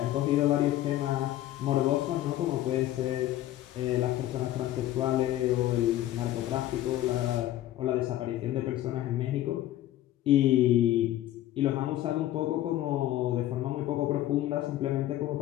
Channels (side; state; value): right; quieter; 13.9 dB